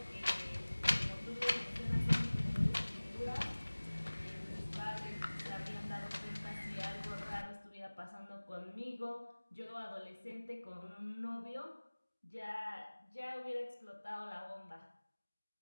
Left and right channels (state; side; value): inverted; both; correlation -1.00